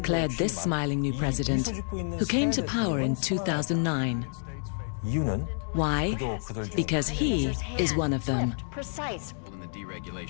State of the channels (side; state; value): right; silent; 59 dB below the other